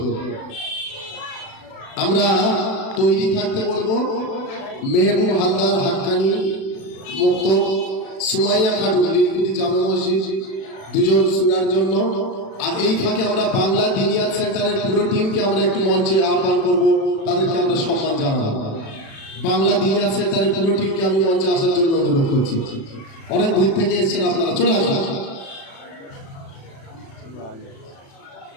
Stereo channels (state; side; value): late; right; 36 ms